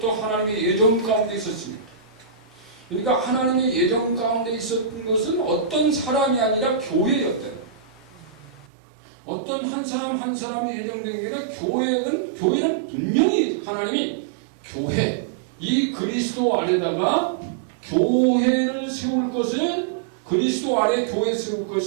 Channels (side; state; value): left; drops out; at 8.7 s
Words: 하나님의 예정 가운데 있었습니다. 그러니까 하나님의 예정 가운데 있었던 것은 어떤 사람이 아니라 교회였대요. 어떤 한 사람 한 사람이 예정된 게 아니라 교회는 분명히 하나님이 교회, 이 그리스도 안에다가 교회를 세울 것을, 그리스도 안에 교회 세울